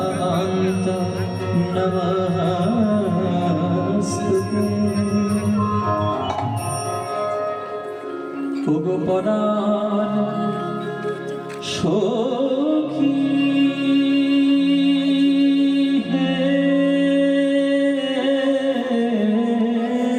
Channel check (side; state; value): both; identical; correlation 1.00